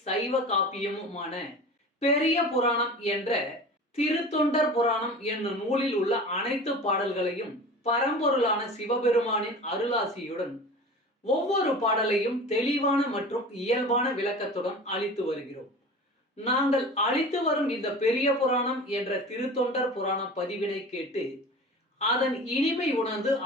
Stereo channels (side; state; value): both; normal; correlation 0.36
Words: சைவ காப்பியமுமான பெரிய புராணம் என்ற திருத்தொண்டர் புராணம் என்னும் நூலில் உள்ள அனைத்து பாடல்களையும் பரம்பொருளான சிவபெருமானின் அருளாசியுடன் ஒவ்வொரு பாடலையும் தெளிவான மற்றும் இயல்பான விளக்கத்துடன் அளித்து வருகிறோம். நாங்கள் அளித்து வரும் இந்த பெரிய புராணம் என்ற திருத்தொண்டர் புராண பதிவினை கேட்டு அதன் இனிமை உணர்ந்து